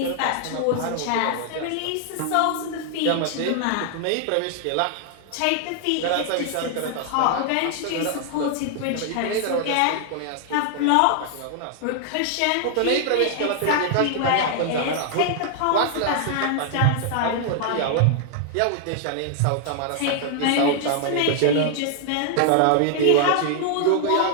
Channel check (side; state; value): both; different; correlation 0.00